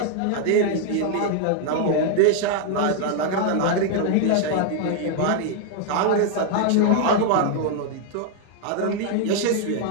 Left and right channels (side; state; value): both; different; correlation 0.00